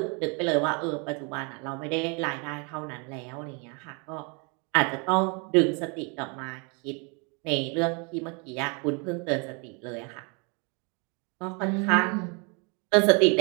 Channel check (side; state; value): left; quieter; 33.2 dB